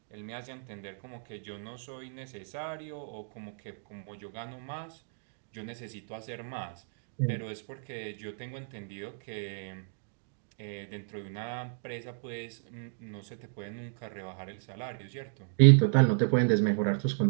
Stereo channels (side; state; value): left; silent; digital silence